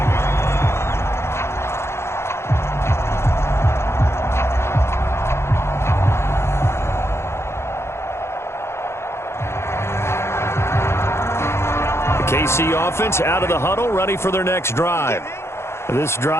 The KC offense out of the huddle, ready for their next drive. This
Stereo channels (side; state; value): right; late; 0.12 ms